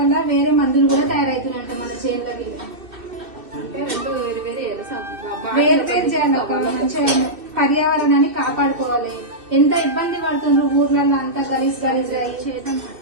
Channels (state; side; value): late; left; 2.6 ms